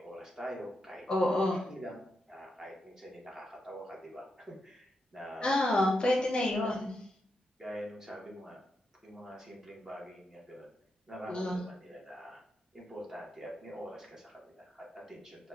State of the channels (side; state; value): both; normal; correlation 0.85